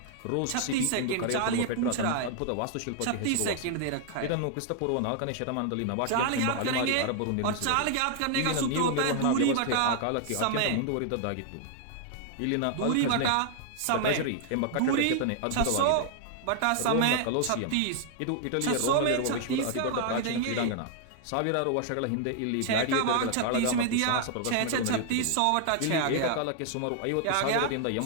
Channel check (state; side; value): different; both; correlation 0.00